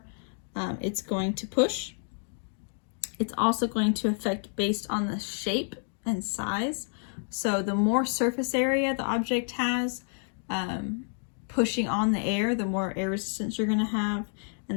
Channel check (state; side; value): silent; right; 58 dB below the other